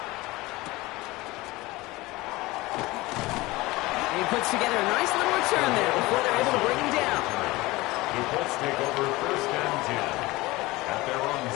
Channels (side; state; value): right; quieter; 20.6 dB